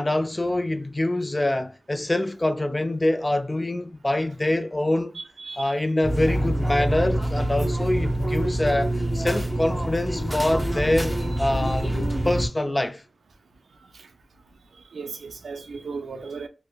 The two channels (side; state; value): both; normal; correlation 0.98